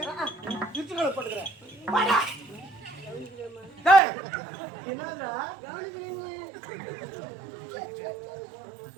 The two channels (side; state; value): left; drops out; at 4.0 s